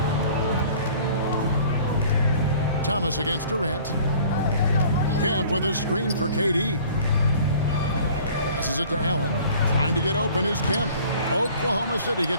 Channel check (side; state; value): both; inverted; correlation -0.50